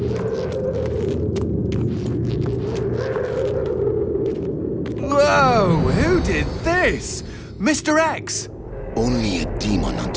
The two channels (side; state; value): both; identical; correlation 1.00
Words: Whoa! Who did this? Mr. X! Only a demon